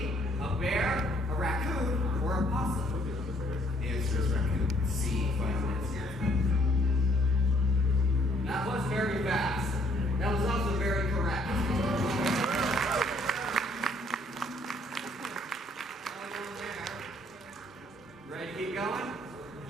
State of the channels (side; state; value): both; normal; correlation 0.65